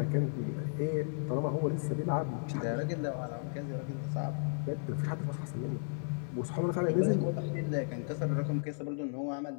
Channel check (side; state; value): right; silent; 55 dB below the other